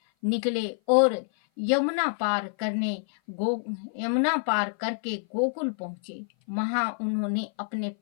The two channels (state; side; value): silent; right; 56 dB below the other